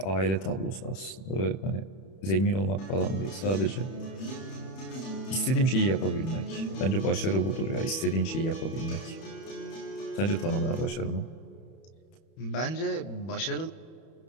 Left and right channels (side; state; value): right; late; 31 ms